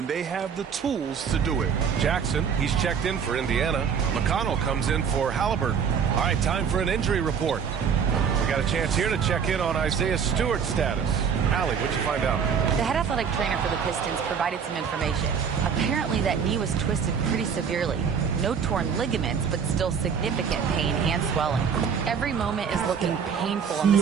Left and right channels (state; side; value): quieter; left; 6.8 dB